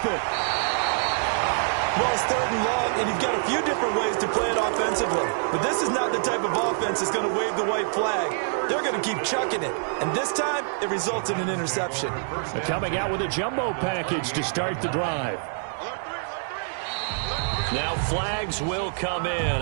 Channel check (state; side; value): silent; left; digital silence